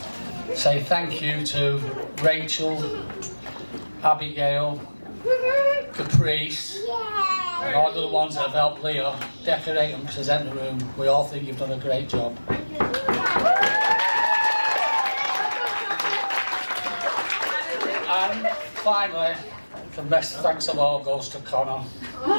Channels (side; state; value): both; inverted; correlation -1.00